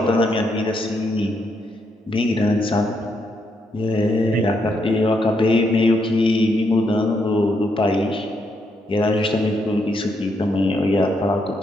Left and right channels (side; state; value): both; normal; correlation 0.77